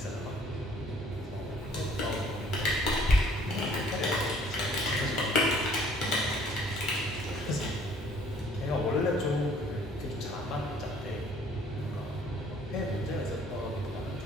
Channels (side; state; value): both; normal; correlation 0.58